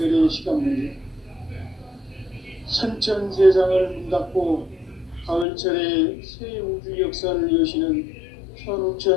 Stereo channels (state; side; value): drops out; right; at 5.5 s